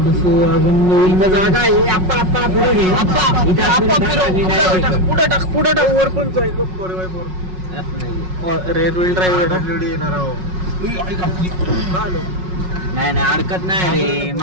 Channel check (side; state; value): left; late; 5.4 ms